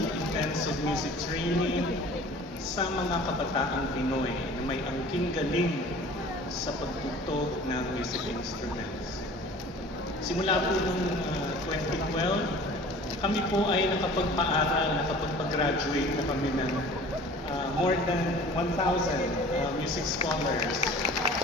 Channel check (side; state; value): both; normal; correlation 0.45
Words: intensive music training, sa mga kabataang Pinoy na may angking galing sa pagtugtog ng music instruments. Simula po noong 2012, kami po ay nakapagpaaral, nakapagpag-graduate na kami ng more than 1,000 music scholars.